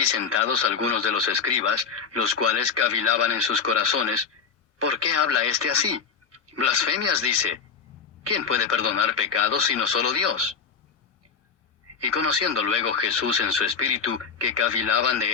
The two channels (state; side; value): quieter; right; 6.0 dB